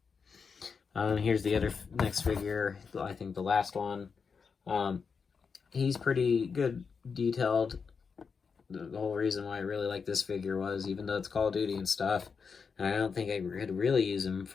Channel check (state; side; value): quieter; right; 5.6 dB